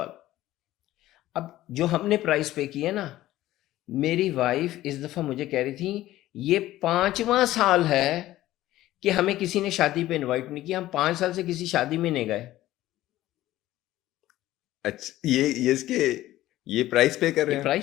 اب جو ہم نے پرائز پے کی ہے نا، میری وائف اس دفعہ مجھے کہہ رہی تھی یہ 5واں سال ہے کہ ہمیں کسی نے شادی پہ انوائٹ نہیں کیا، ہم 5 سال سے کسی شادی میں نہیں گئے۔ اچھا یہ اس کے یہ پرائز پے کر رہے ہیں؟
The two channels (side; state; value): right; quieter; 15.2 dB